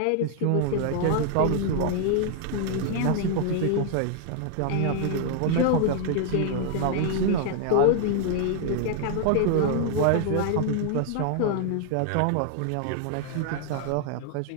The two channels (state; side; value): different; both; correlation 0.00